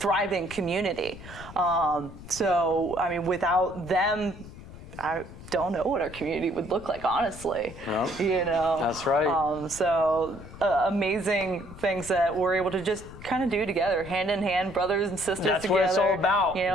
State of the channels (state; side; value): noise; left; rumble, 15 dB below the sound